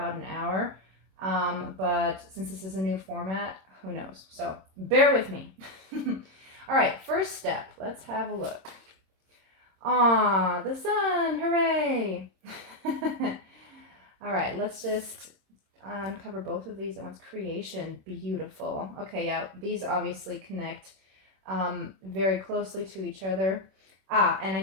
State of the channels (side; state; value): left; late; 26 ms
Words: an hour, but since this is a new format, who knows? So bear with me. All right, first step, let's have a look. Ah, the sun! Hooray! All right, let's just uncover both of these at once. Creation, beautiful. Okay, yeah, these obviously connect very closely to each other. Ah, and I